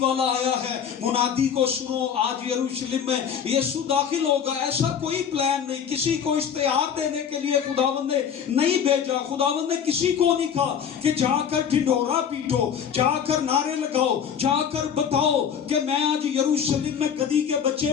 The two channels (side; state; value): right; quieter; 7.9 dB